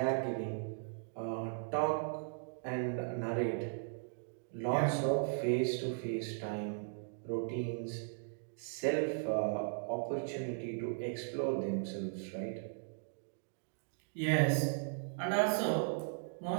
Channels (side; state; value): left; silent; digital silence